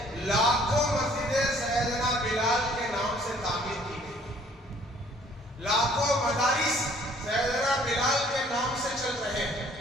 لاکھوں مسجدیں سیدنا بلال کے نام سے تعمیر کی گئی، لاکھوں مدارس سیدنا بلال کے نام سے چل رہے ہیں۔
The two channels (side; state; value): both; normal; correlation 0.59